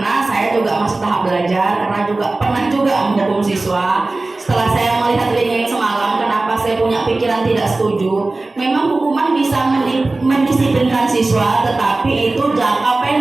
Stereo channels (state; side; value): quieter; left; 3.2 dB